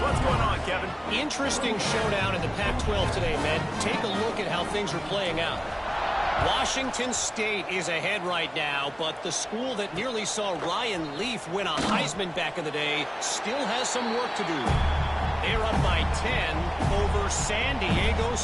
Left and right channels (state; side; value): identical; both; correlation 1.00